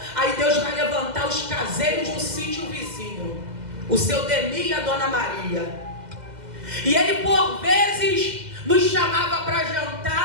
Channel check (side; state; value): left; late; 2.0 ms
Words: aí Deus vai levantar os caseiros do sítio vizinho, o seu Demi e a Dona Maria. E ele por vezes nos chamava para